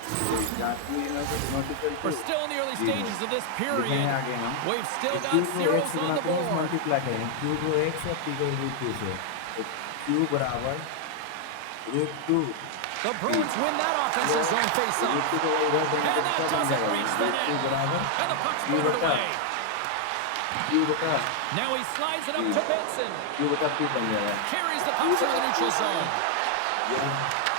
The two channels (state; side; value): different; both; correlation 0.00